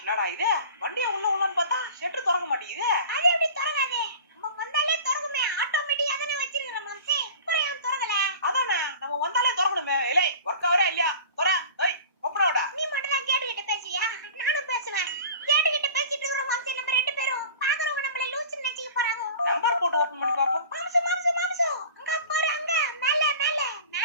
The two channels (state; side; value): inverted; both; correlation -0.40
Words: என்னடா இது? வண்டியை உள்ள உள்ளன்னு பார்த்தா ஷெட்டு திறக்க மாட்டேங்குது. அது எப்படி திறக்காது? நம்ம வந்தாலே திறக்குமே. ஆட்டோமேட்டிக்கா தானே வச்சிருக்கோம் மாம்சே. அப்புறம் ஏன் திறக்கல? அதானே நம்ம வந்தாலே திறக்கணுமே. ஏலே ஒர்க் ஆவரா இல்லையா? தொற. ஏய் ஓபனோடா. நீ மட்டும் தான் கேட்டுக்கிட்ட பேசியா? நானும் பேசுவேன். கேட்டுக்கிட்ட பேசிட்டு இருக்கோம் மாம்சே. நம்ம ரெண்டு பேரும் பாக்குறவங்க நம்மள லூசுன்னு நினைச்சிக்க போறாங்க. நம்பர் போட்டு ஓபன் பண்ணி பாப்போம். மாம்சே மாம்சே மாம்சே. அங்க பாரு அங்க மேல மேல